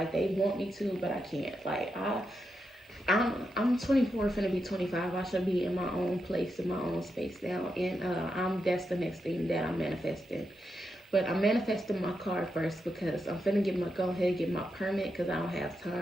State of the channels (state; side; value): normal; both; correlation 0.85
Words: they want me to, but I can't. Like, I'm 24, finna be 25. I should be in my own place, in my own space now, and that's the next thing that I'm manifesting. But I'm manifesting my car first, because I'm finna go ahead and get my permit, because I don't have